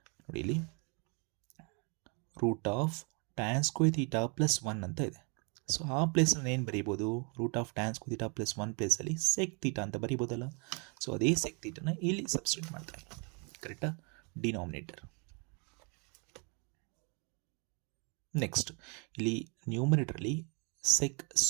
ನೋಡಿ, ಇಲ್ಲಿ root of tan square theta plus 1 ಅಂತ ಇದೆ. ಸೊ ಆ ಪ್ಲೇಸಲ್ಲಿ ಏನು ಬರೀಬೋದು, root of tan square theta plus 1 ಪ್ಲೇಸಲ್ಲಿ ಸೆಕ್ ಥೀಟಾ ಅಂತ ಬರೀಬೋದಲ್ಲ. ಸೊ ಅದೇ ಸೆಕ್ ಥೀಟಾನ ಇಲ್ಲಿ ಸಬ್ಸ್ಟಿಟ್ಯೂಟ್ ಮಾಡ್ತಾ ಇದ್ದೀವಿ, ಕರೆಕ್ಟಾ, ಡಿನಾಮಿನೇಟರ್. ನೆಕ್ಸ್ಟ್ ಇಲ್ಲಿ ನ್ಯೂಮರೇಟರಲ್ಲಿ ಸೆಕ್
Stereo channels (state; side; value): quieter; left; 34.7 dB